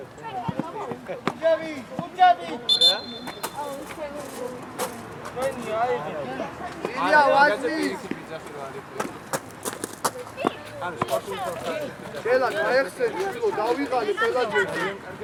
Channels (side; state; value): both; identical; correlation 1.00